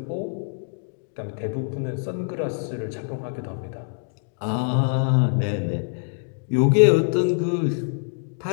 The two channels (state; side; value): silent; right; digital silence